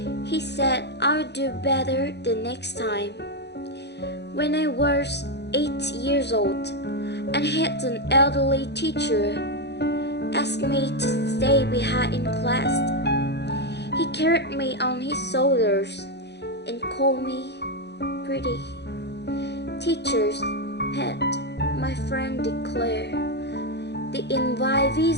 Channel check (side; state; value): right; late; 0.49 ms